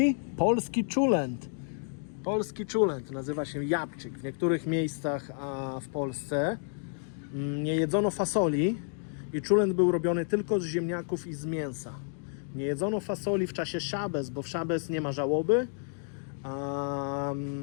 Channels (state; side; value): silent; right; 58 dB below the other